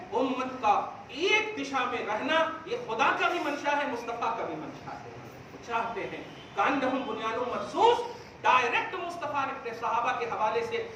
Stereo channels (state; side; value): identical; both; correlation 1.00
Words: امت کا ایک دشا میں رہنا یہ خدا کا بھی منشا ہے، مصطفیٰ کا بھی منشا ہے۔ وہ چاہتے ہیں کانہم بنیان مرصوص، ڈائریکٹ مصطفیٰ نے اپنے صحابہ کے حوالے سے